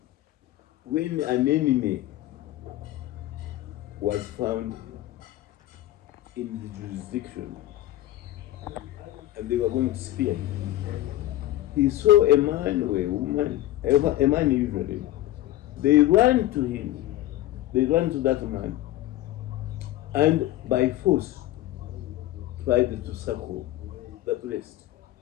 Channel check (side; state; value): right; quieter; 14.9 dB